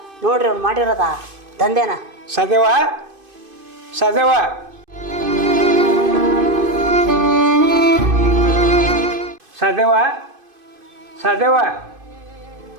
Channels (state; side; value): late; left; 2.5 ms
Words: ನೋಡ್ರಿ ಅವ್ನು ಮಾಡಿರೋದ ದಂಧೆನ. ಸದೇವ ಸದೇವ ಸದೇವ ಸದೇವ